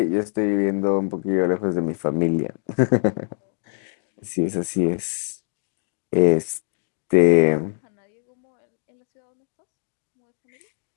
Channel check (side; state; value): right; silent; digital silence